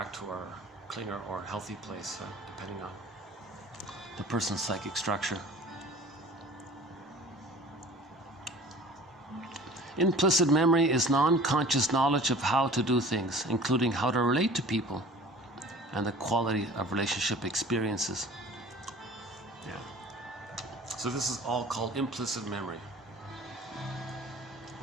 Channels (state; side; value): normal; both; correlation 0.44